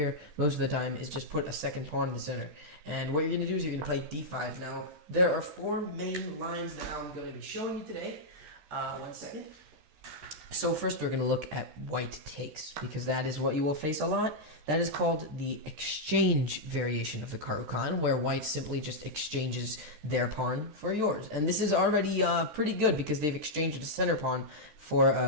most of the time is just put a second pawn in the center. And what you're going to do is you're going to play d5. Now, there are 4 main lines that I'm going to be showing you today. One second. So first we're going to look at White takes, because that is what you will face a lot. That is called the exchange variation of the Caro Kann, where White simply just exchanges their pawn for yours. And this is already pretty good, because they've exchanged a center pawn for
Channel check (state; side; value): late; left; 13 ms